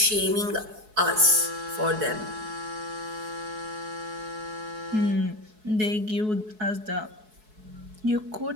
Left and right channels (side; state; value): left; late; 4.7 ms